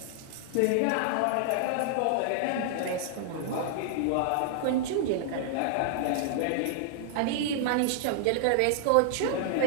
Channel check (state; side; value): different; both; correlation -0.01